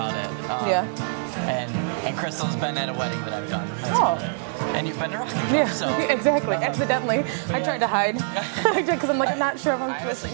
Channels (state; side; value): silent; left; digital silence